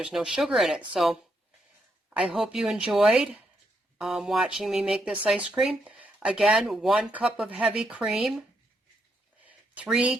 no sugar in it. So I hope you enjoyed watching me make this ice cream. Again, 1 cup of heavy cream, 3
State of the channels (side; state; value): both; normal; correlation 0.78